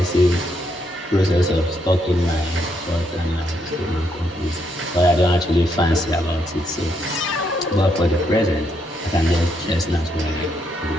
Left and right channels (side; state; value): both; normal; correlation 0.76